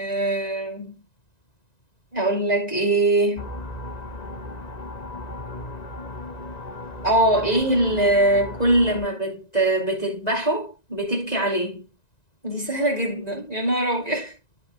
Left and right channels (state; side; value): late; right; 1.9 ms